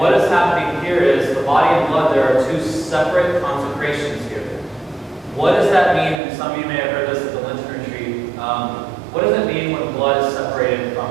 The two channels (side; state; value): left; drops out; at 6.2 s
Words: is happening here is the body and blood, there are 2 separate consecrations here. What does that mean? And some of you may have heard this at the Lenten retreat. What does it mean when blood is separated